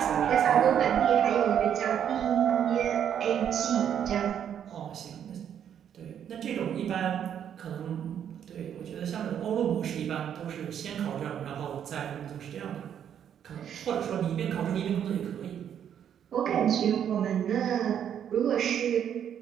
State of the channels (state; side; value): quieter; left; 9.1 dB